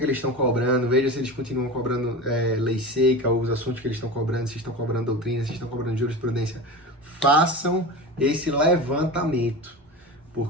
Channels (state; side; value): normal; both; correlation 0.28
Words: eles estão cobrando, veja se eles continuam cobrando lei seca, ou os assuntos que eles estão cobrando, se estão cobrando doutrina, se estão cobrando jurisprudência. Façam esse levantamento,